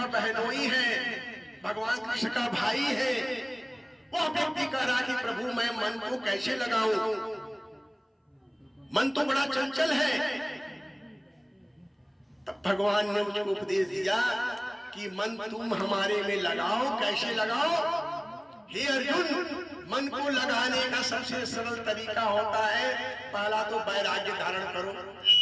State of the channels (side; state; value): both; identical; correlation 1.00